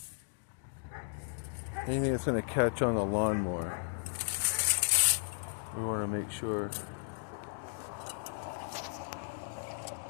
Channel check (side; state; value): right; silent; digital silence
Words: Anything that's gonna catch on the lawnmower, we want to make sure